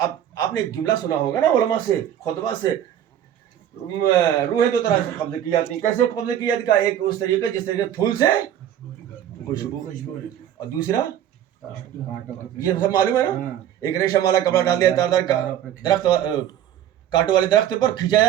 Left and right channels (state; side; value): quieter; left; 10.7 dB